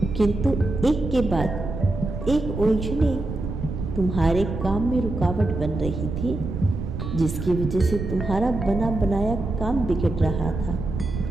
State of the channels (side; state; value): right; noise; rumble, 5 dB below the sound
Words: किंतु एक के बाद एक उलझने तुम्हारे काम में रुकावट बन रही थी, जिसकी वजह से तुम्हारा बना बनाया काम बिगड़ रहा था।